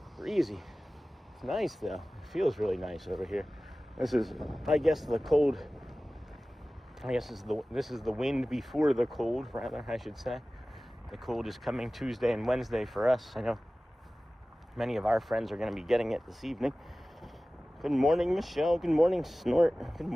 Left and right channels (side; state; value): both; normal; correlation 0.97